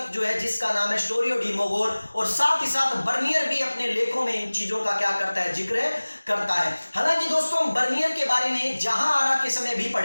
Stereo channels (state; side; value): inverted; both; correlation -1.00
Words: जो है जिसका नाम है स्टोरियो डी मोगोर, और साथ ही साथ बर्नियर भी अपने लेखों में इन चीजों का क्या करता है, जिक्र करता है। हालांकि दोस्तों हम बर्नियर के बारे में जहां आरा के समय भी